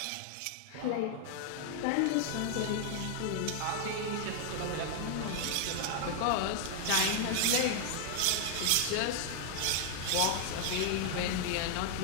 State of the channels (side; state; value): both; different; correlation 0.00